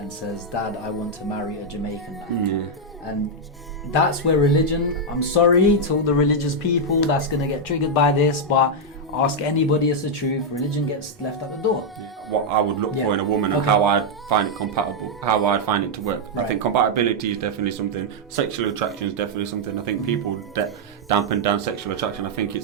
says, Dad, I want to marry a Jamaican man. And that's where religion, I'm sorry to all the religious people that's going to get triggered by this, but ask anybody, it's the truth, religion gets left at the door. What I would look for in a woman and how I'd find it compatible, how I'd find it to work. I think compatibility is definitely something, sexual attraction is definitely something. I think people dampen down sexual attraction. I think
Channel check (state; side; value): normal; both; correlation -0.02